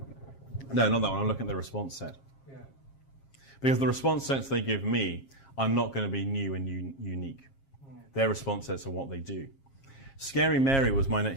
No, not that one. I'm looking at the response set. Yeah. Because the response sets they give me are not going to be new and unique. Their response sets are what they do. Scary Mary was my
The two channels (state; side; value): late; right; 7.4 ms